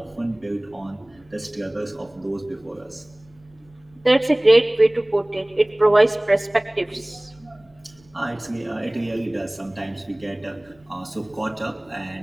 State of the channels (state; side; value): noise; right; rumble, 30 dB below the sound